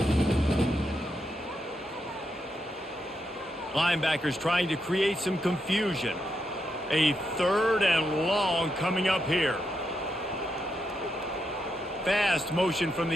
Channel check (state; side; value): normal; both; correlation 0.83